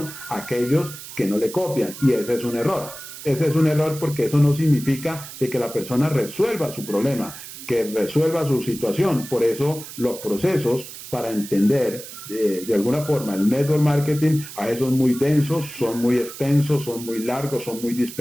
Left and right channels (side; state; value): right; noise; hiss, 13 dB below the sound